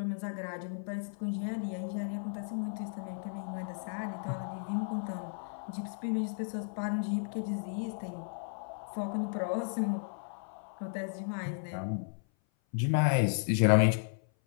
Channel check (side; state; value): right; silent; 55 dB below the other